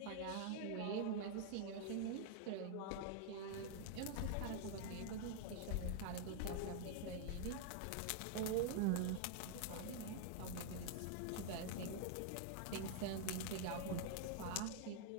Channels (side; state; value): both; different; correlation 0.00